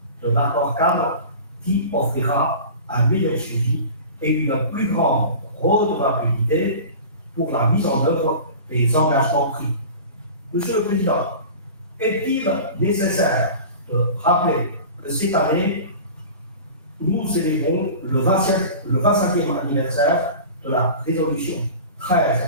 de l'accord cadre qui offrira un meilleur suivi et une plus grande redevabilité pour la mise en œuvre des engagements pris. Monsieur le Président, est-il nécessaire de rappeler que cette année, nous célébrons le 25e anniversaire de la résolution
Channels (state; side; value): inverted; both; correlation -0.37